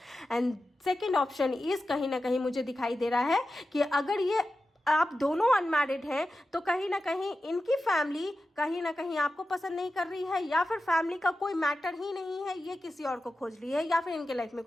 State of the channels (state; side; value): normal; both; correlation 0.93